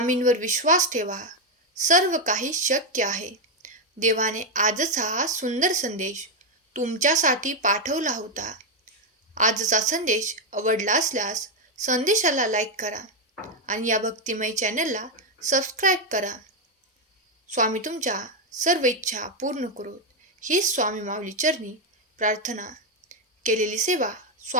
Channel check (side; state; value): both; normal; correlation 0.03